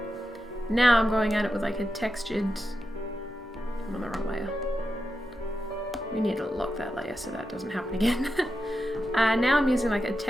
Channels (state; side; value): normal; both; correlation 0.89